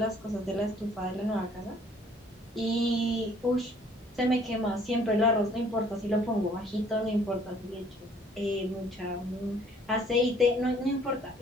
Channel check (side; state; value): both; normal; correlation 0.59